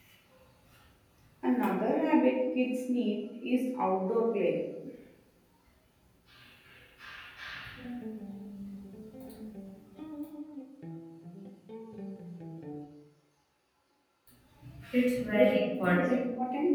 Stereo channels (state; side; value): identical; both; correlation 1.00